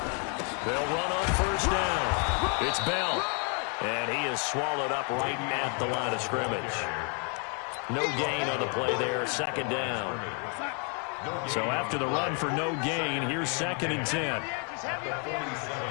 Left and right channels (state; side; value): quieter; right; 39.1 dB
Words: They'll run on first down. It's Bell. And he is swallowed up right at the line of scrimmage. No gain on the play there. Second down. So after the run for no gain, here's 2nd and 10.